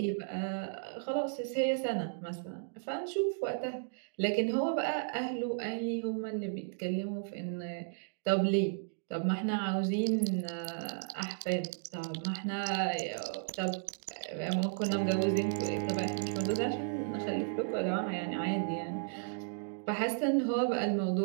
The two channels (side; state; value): left; silent; digital silence